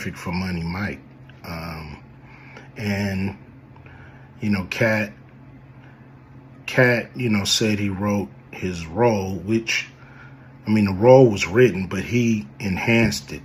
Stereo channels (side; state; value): both; identical; correlation 1.00